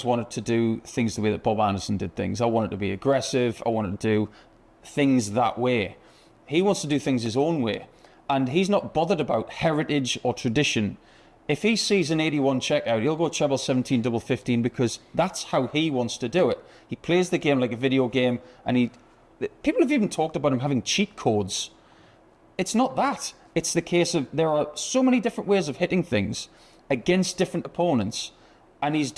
wanted to do things the way that Bob Anderson did things. I wanted to be aggressive. I wanted to do things that way. He wants to do things his own way. And he's not bothered about heritage or tradition. If he sees an 81 checkout, he'll go treble 17, double 15, because that's how he wants to do it. He plays the game like a video game, and people have even talked about him having cheat codes. It's not that. It's the case of there are so many different ways of hitting things against different opponents, and he's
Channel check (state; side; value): identical; both; correlation 1.00